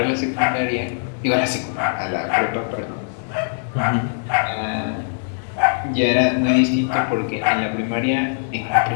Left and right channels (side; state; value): right; silent; 57 dB below the other